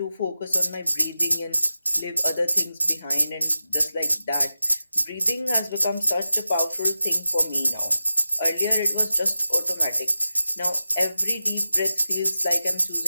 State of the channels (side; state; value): both; inverted; correlation -0.93